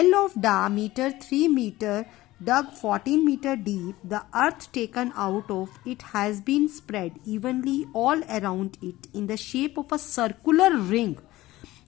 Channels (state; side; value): quieter; right; 17.3 dB